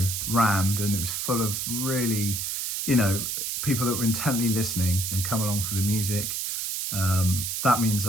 rammed, and it was full of really, you know, people that were intently listening and come along for the music, that means a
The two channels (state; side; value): noise; right; hiss, 2 dB below the sound